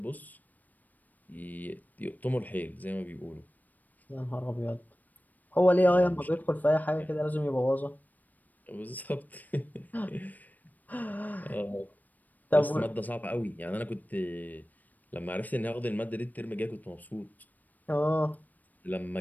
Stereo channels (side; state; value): right; late; 0.083 ms